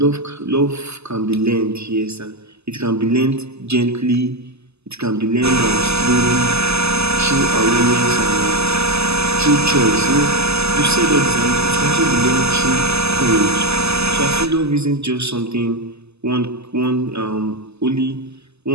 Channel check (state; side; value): late; left; 0.79 ms